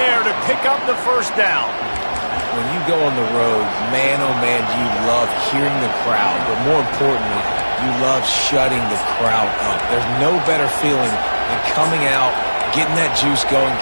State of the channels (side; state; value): both; inverted; correlation -1.00